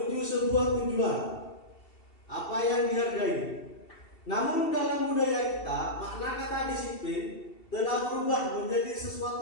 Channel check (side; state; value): right; late; 2.7 ms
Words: sebuah tujuan apa yang dihargai. Namun dalam budaya kita, makna kata disiplin telah berubah menjadi